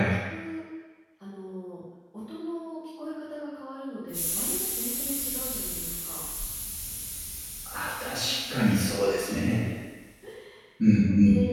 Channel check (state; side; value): identical; both; correlation 1.00